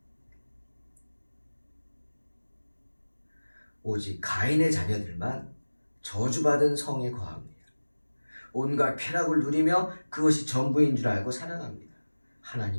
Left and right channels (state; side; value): inverted; both; correlation -1.00